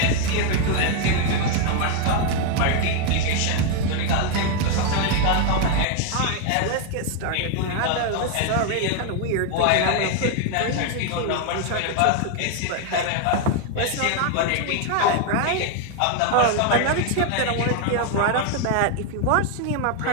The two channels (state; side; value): different; both; correlation 0.01